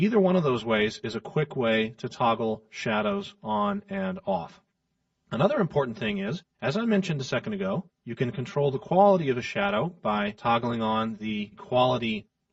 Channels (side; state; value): both; identical; correlation 1.00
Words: one of those ways is a quick way to toggle shadows on and off. Another important thing is, as I mentioned a second ago, you can control the quality of a shadow by toggling on the quality